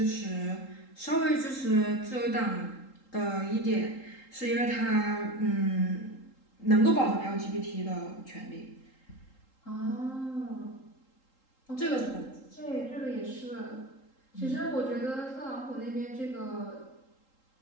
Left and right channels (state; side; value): late; right; 3.8 ms